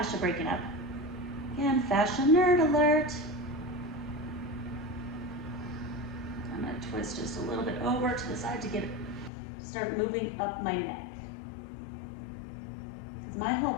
breaking up. Again, fascia nerd alert. I'm gonna twist just a little bit over to the side to get it, start moving up my neck. Because my whole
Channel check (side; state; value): right; drops out; at 9.3 s